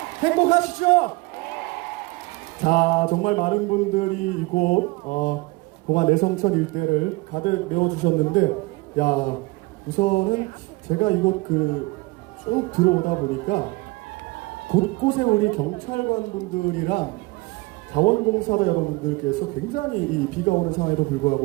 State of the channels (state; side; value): quieter; left; 23.8 dB